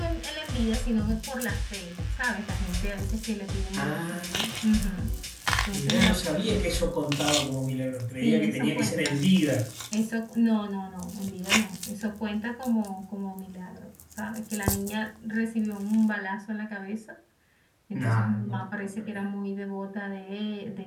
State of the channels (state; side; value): identical; both; correlation 1.00